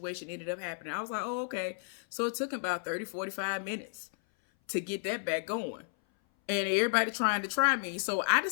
ended up happening. I was like, oh, okay. So it took about 30, 45 minutes to get that back going. And everybody trying to try me. So I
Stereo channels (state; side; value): silent; right; 56 dB below the other